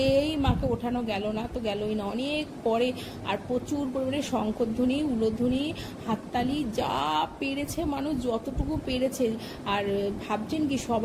মাকে ওঠানো গেল না, তো গেলই না। অনেক পরে আর প্রচুর পরিমাণে শঙ্খধ্বনি, উলধ্বনি, হাততালি, যা পেরেছে মানুষ যতটুকু পেরেছে। আর ভাবছেন কি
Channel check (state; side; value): identical; both; correlation 1.00